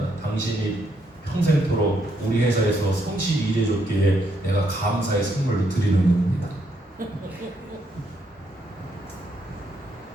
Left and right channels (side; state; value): both; normal; correlation 0.75